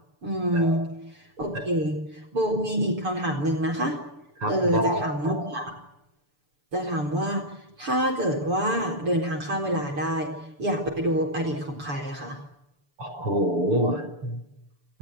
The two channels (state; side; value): late; left; 6.9 ms